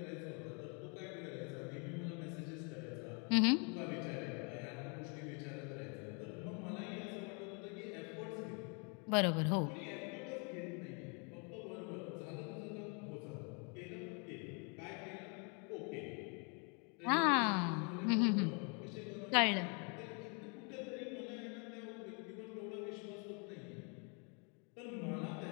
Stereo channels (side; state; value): right; quieter; 35.9 dB